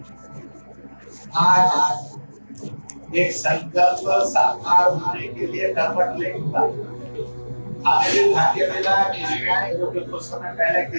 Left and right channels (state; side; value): inverted; both; correlation -1.00